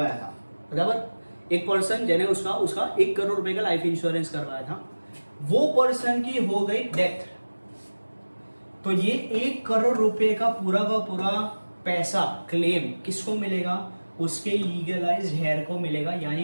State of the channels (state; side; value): inverted; both; correlation -1.00